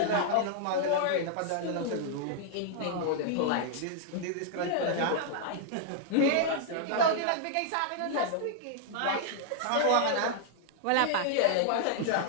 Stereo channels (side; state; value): both; different; correlation 0.00